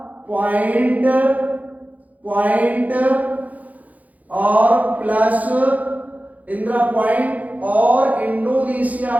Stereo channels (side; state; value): left; late; 0.076 ms